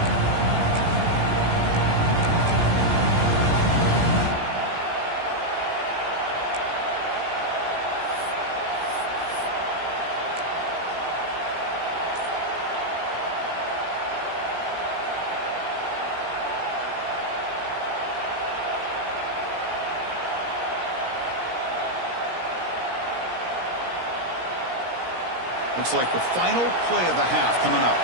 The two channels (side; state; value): left; late; 17 ms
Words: Looks like the final play of the half coming up.